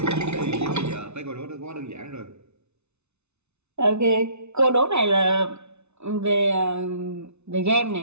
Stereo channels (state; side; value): late; left; 0.81 ms